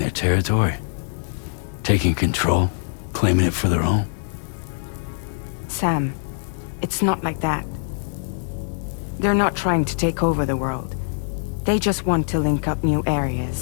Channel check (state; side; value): silent; right; 63 dB below the other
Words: territory? Taking control? Claiming it for their own? Sam, it's not like that. They're not trying to take over the world. They just want to link up new